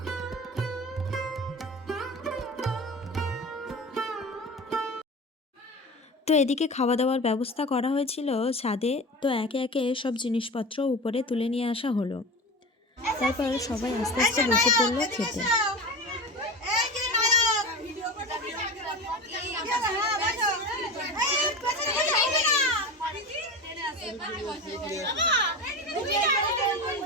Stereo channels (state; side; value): normal; both; correlation 0.29